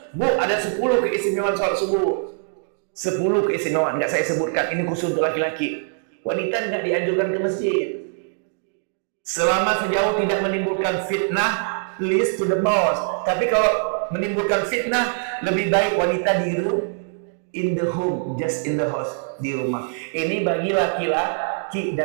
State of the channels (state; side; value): silent; left; 64 dB below the other